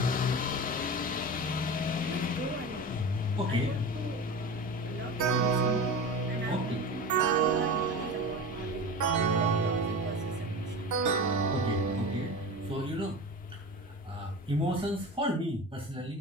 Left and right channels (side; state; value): both; normal; correlation 0.29